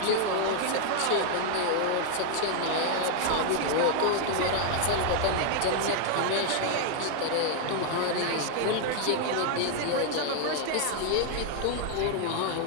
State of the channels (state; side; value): different; both; correlation 0.00